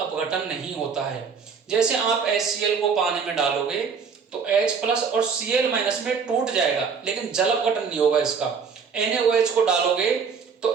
नहीं होता है। जैसे आप HCl को पानी में डालोगे तो H+ और Cl- में टूट जाएगा, लेकिन जल अपघटन नहीं होगा इसका। NaOH को डालोगे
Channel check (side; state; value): left; quieter; 5.9 dB